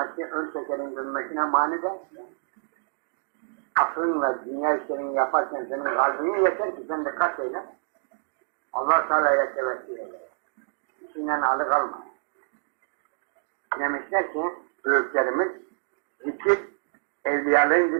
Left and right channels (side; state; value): left; silent; digital silence